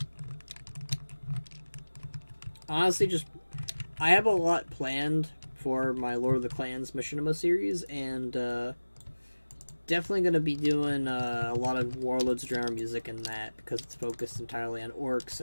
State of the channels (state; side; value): inverted; both; correlation -1.00